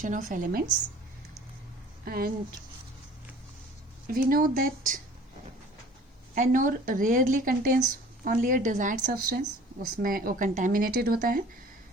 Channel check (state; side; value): normal; both; correlation 0.48